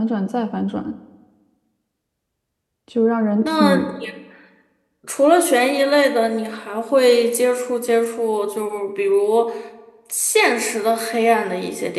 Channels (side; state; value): both; identical; correlation 1.00